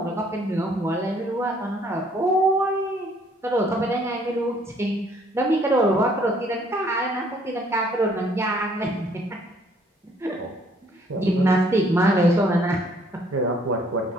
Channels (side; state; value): both; normal; correlation 0.62